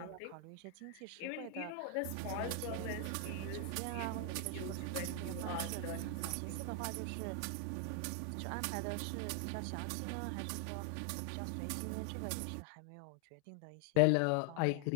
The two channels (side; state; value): both; different; correlation 0.00